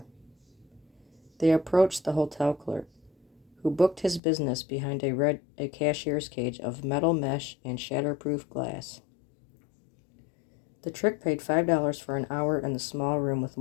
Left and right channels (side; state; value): right; drops out; at 4.2 s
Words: They approached the hotel clerk, who booked his business behind a cashier's cage of metal mesh and shatterproof glass. The trick paid $5 for an hour in the small room with